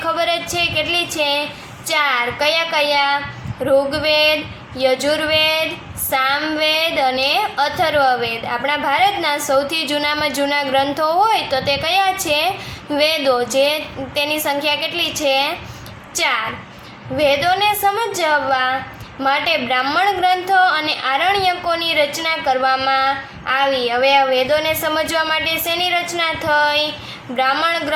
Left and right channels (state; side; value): identical; both; correlation 1.00